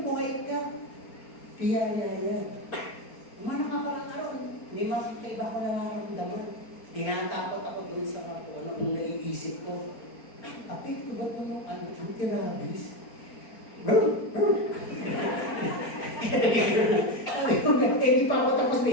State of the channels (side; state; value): right; late; 4.4 ms